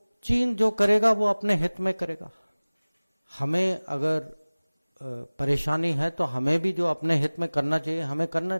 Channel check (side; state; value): both; inverted; correlation -1.00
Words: चीन जो करेगा वो अपने हित में करेगा। हमें अगर परेशानी है तो हमें भी जो अपने हित में करना चाहिए हमें करना